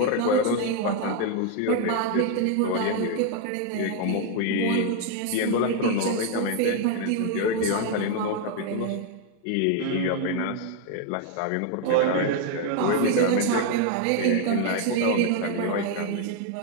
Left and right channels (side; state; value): both; different; correlation 0.01